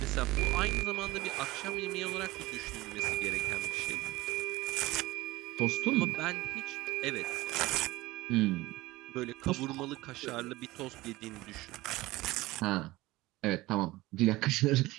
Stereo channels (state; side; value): quieter; left; 19.0 dB